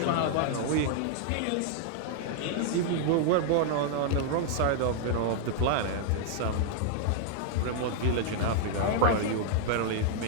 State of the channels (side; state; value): both; different; correlation -0.01